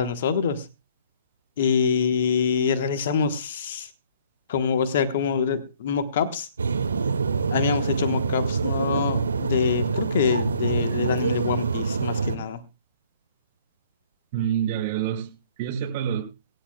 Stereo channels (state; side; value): inverted; both; correlation -0.59